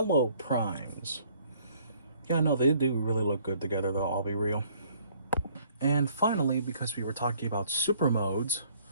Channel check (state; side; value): inverted; both; correlation -0.61